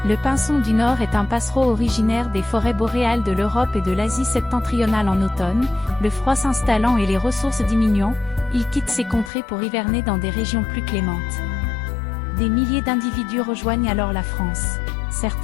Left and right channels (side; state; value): right; drops out; at 9.3 s